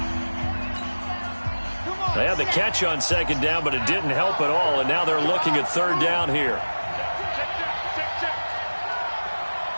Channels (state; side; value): inverted; both; correlation -1.00